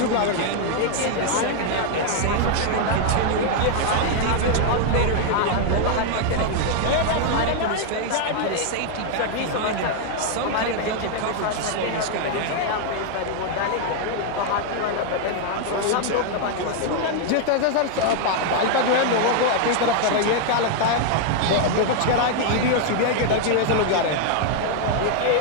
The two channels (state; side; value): different; both; correlation 0.00